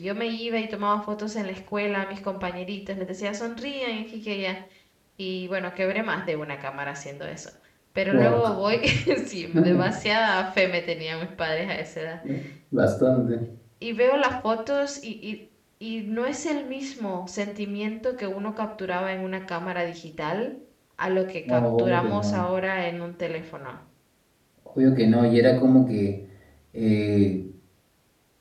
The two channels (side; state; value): both; identical; correlation 1.00